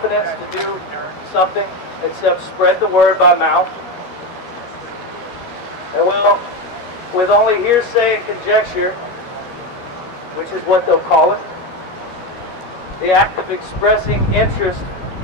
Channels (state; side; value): late; right; 13 ms